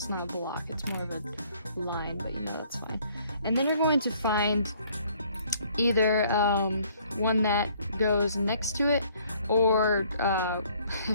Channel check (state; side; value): inverted; both; correlation -0.62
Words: not a block, it's more of a line, but you know that's fine. And then you're going to find either one that goes next to it, or